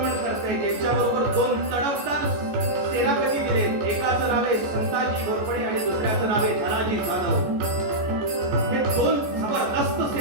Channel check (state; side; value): late; left; 14 ms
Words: करतायत. यांच्याबरोबर दोन तडफदार सेनापती दिले. एकाचं नाव आहे संताजी घोरपडे आणि दुसऱ्याचं नाव आहे धनाजी जाधव. हे दोन जबरदस्त